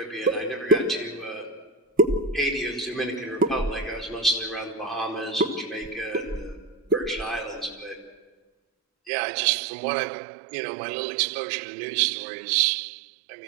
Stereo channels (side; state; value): left; drops out; at 9.1 s